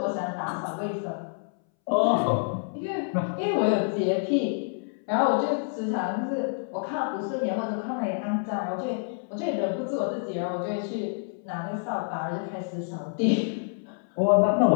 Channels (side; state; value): right; silent; 60 dB below the other